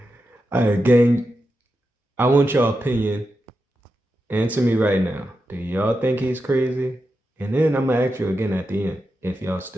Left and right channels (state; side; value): normal; both; correlation 0.89